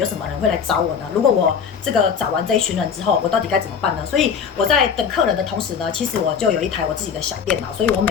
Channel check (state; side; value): quieter; right; 6.9 dB